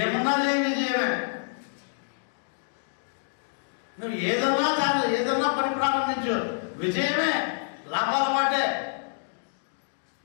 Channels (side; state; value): right; silent; digital silence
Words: చేయ విజయమే. నువ్వు ఏదన్నా పని ప్రారంభించు, విజయమే, లాభాల మాటే.